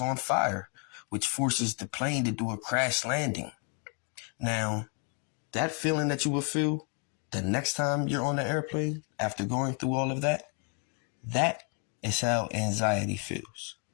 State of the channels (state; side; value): quieter; right; 38.7 dB